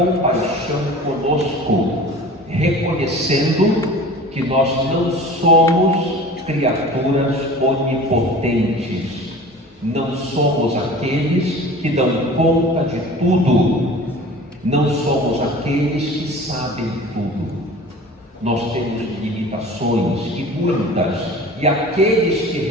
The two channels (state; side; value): normal; both; correlation 0.40